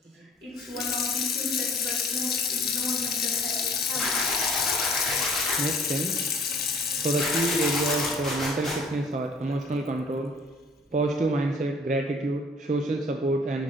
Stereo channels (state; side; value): normal; both; correlation 0.53